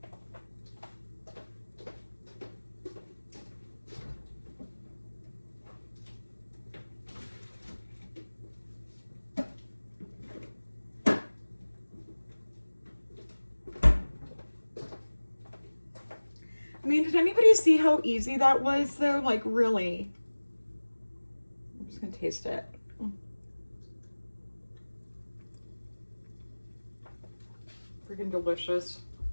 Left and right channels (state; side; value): inverted; both; correlation -1.00